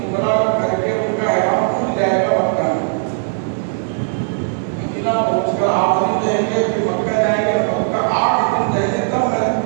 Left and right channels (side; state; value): left; silent; 67 dB below the other